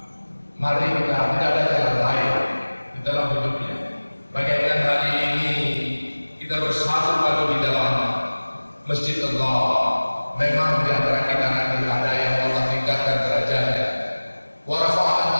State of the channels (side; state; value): both; inverted; correlation -1.00